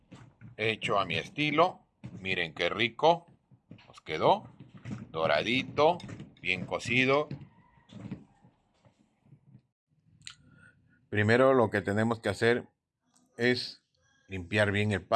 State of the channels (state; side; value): identical; both; correlation 1.00